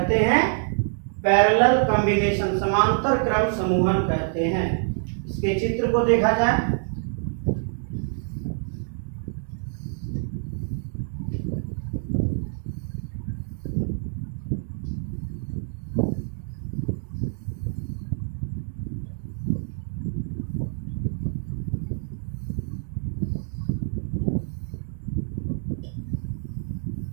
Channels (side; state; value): left; silent; digital silence